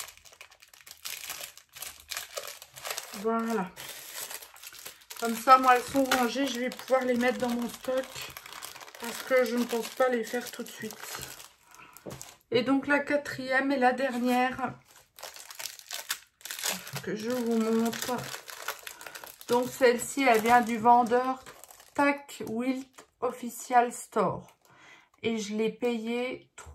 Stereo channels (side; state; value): both; identical; correlation 1.00